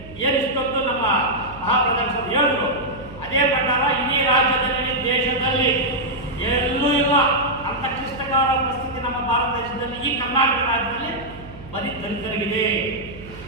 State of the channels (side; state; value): right; noise; hum, 17 dB below the sound